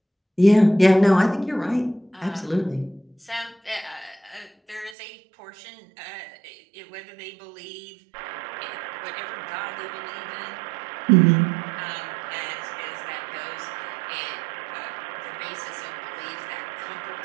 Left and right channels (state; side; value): drops out; left; at 5.0 s